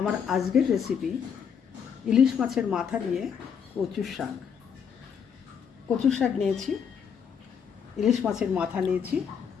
আজকের রেসিপি ইলিশ মাছের মাথা দিয়ে কচুর শাক। কচুর শাক নিয়েছি, ইলিশ মাছের মাথা নিয়েছি,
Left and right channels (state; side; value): quieter; right; 7.2 dB